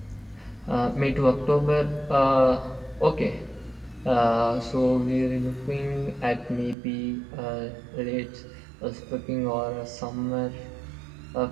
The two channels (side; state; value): left; drops out; at 6.8 s